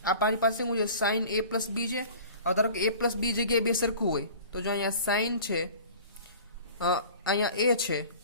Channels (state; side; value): inverted; both; correlation -0.43